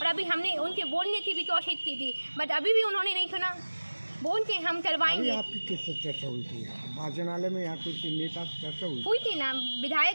अभी हमने उनके बोलने की भी कोशिश की थी, बट अभी भी उन्होंने नहीं सुना। बोलते हम करवाएंगे। आपकी किससे चर्चा हुई थी वाचनालय में? यहाँ कुछ नेता से चर्चा हुई थी ना,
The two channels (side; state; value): both; inverted; correlation -1.00